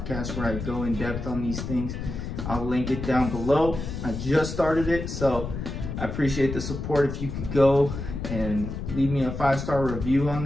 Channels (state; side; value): noise; left; rumble, 6 dB below the sound